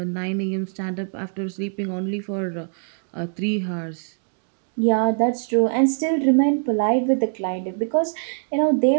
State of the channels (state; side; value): silent; left; 63 dB below the other